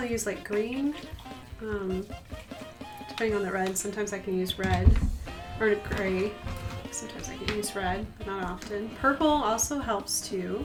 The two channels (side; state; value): both; identical; correlation 1.00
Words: use like green, depending on the red. Sometimes I can use red or gray. Sometimes I can use red, but not often. Purple also helps too.